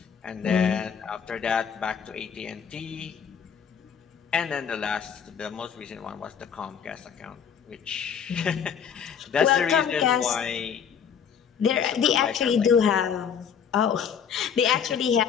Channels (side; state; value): right; quieter; 7.5 dB